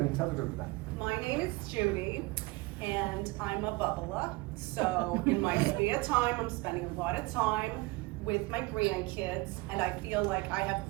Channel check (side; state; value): left; quieter; 23.5 dB